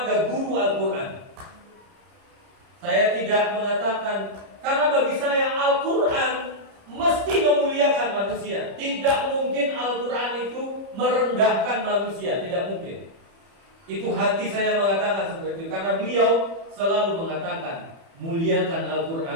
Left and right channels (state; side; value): late; left; 30 ms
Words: guru Al-Quran. Saya tidak mengatakan, karena bagi saya Al-Quran mesti memuliakan manusia. Tidak mungkin Al-Quran itu merendahkan manusia, tidak mungkin. Itu hati saya mengatakan seperti itu, karena beliau selalu mengatakan, muliakan